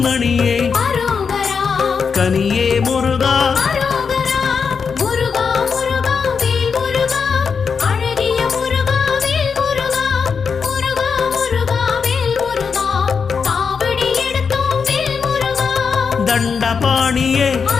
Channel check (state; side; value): quieter; right; 5.8 dB